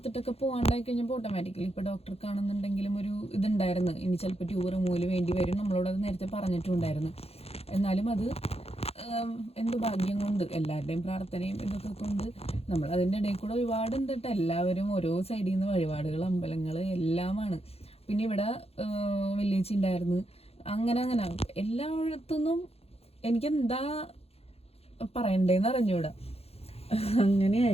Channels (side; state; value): right; late; 0.29 ms